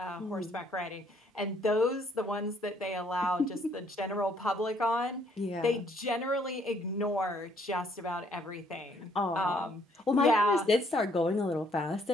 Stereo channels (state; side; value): normal; both; correlation 0.66